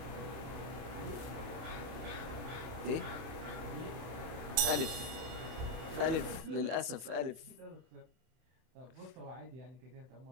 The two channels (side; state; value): left; late; 31 ms